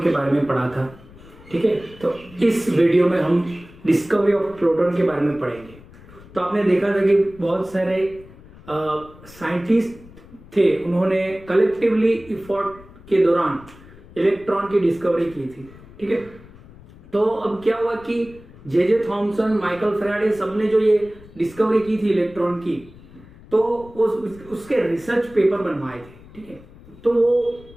के बारे में पढ़ा था, ठीक है। तो इस वीडियो में हम डिस्कवरी ऑफ प्रोटॉन के बारे में पढ़ेंगे। तो आपने देखा था कि बहुत सारे साइंटिस्ट थे, उन्होंने कलेक्टिवली इफोर्ट के दौरान इलेक्ट्रॉन की डिस्कवरी की थी, ठीक है। तो अब क्या हुआ कि जे थॉमसन, माइकल फैराडे, सबने जो ये डिस्कवरी की थी इलेक्ट्रॉन की, तो उसके रिसर्च पेपर बनवाए थे, ठीक है। तो वो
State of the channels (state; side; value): noise; left; rumble, 21 dB below the sound